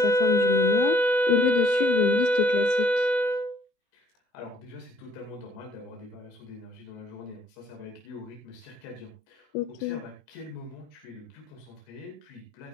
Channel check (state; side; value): late; right; 20 ms